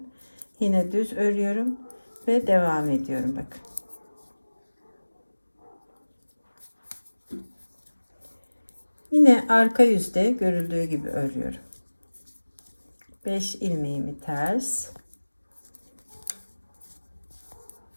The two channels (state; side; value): inverted; both; correlation -1.00